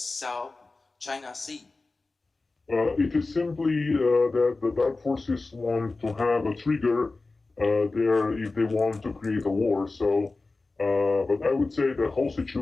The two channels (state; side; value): quieter; right; 3.5 dB